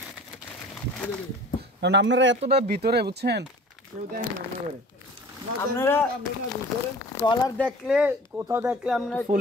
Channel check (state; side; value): normal; both; correlation 0.44